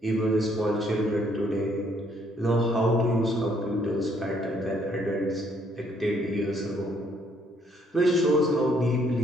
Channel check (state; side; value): normal; both; correlation 0.67